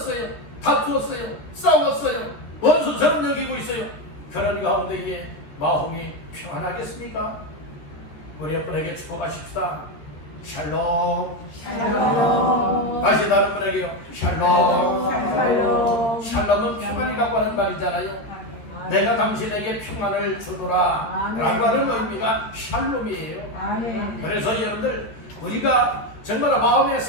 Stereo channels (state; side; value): late; right; 14 ms